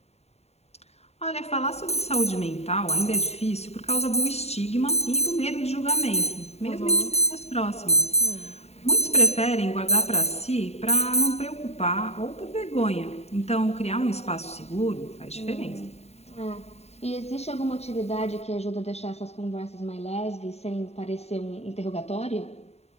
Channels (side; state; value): right; late; 0.31 ms